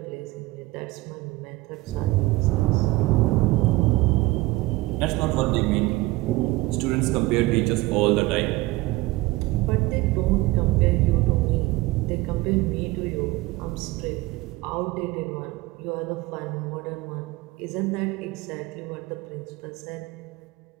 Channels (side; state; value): left; quieter; 20.0 dB